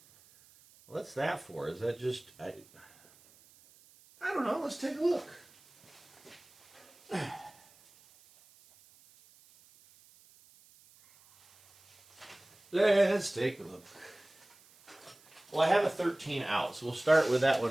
what's that for? Is that just... I don't know. Let's take a look. Let's take a look. Well, I have a 13 out, so we'll start with that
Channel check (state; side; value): noise; right; hiss, 27 dB below the sound